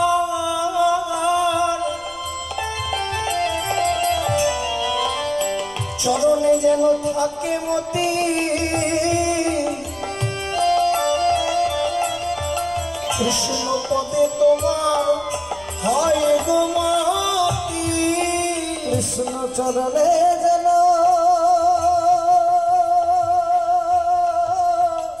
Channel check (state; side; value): noise; left; rumble, 27 dB below the sound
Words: চরণে যেন থাকে মতি, কৃষ্ণ পদে তোমার হয় গোমতী, কৃষ্ণ চরণে যেন